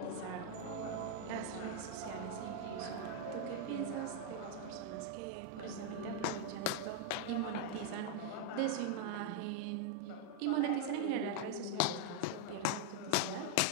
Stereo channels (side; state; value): both; different; correlation 0.00